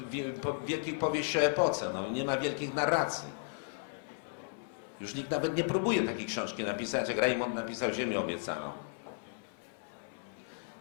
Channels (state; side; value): silent; right; 55 dB below the other